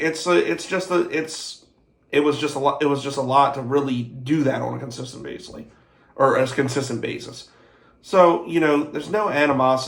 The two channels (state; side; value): identical; both; correlation 1.00